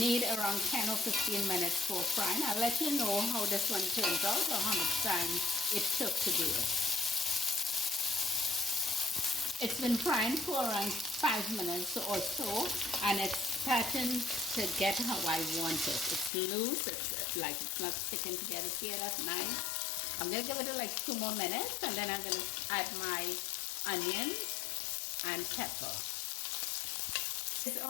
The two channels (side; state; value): right; drops out; at 16.3 s